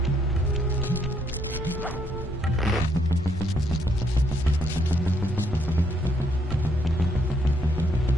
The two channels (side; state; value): both; normal; correlation 0.72